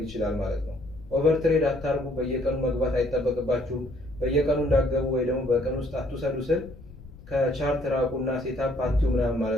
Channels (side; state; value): left; noise; rumble, 18 dB below the sound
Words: ይችላል ማለት ነው። ኦቨር ትሬድ አታርጉ። በየቀኑ መግባት አይጠበቅባችሁም። በየቀኑ እንዳገቡ ወይ ደግሞ በቀን ውስጥ አትውሰዱ ስል ከቻርት ራቁና ሴታፕ አትዩ ምናምን